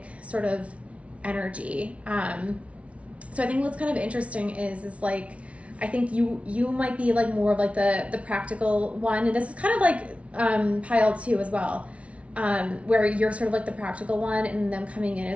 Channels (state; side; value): late; left; 0.063 ms